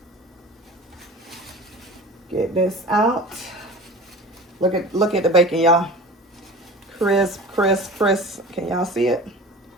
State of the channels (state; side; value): normal; both; correlation 0.37